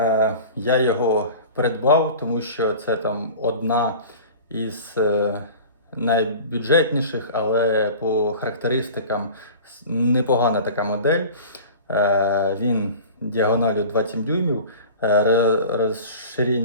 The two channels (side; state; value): both; inverted; correlation -0.38